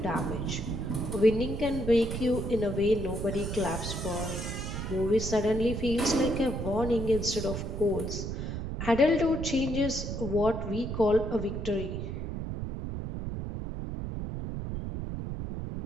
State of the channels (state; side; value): noise; right; rumble, 4 dB below the sound